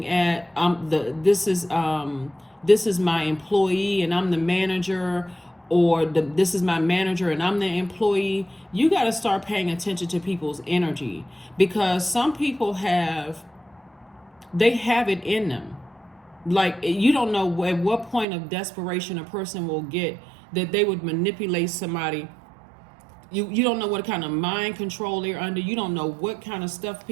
this is my employee and I'm the manager, or this is my manager and I'm the employee. You got to start paying attention to people's energy, because some people they have it in them. Like, you don't know at what point of desperation a person will get that they would manipulate somebody. You don't know what kind of mind control they're under. You don't know what kind of stuff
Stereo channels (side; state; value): left; drops out; at 18.2 s